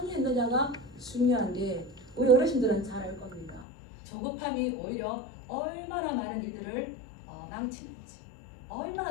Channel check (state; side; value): drops out; right; at 3.7 s